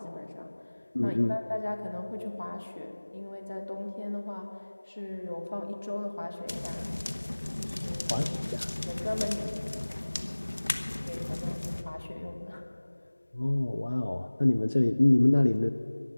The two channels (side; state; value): both; inverted; correlation -1.00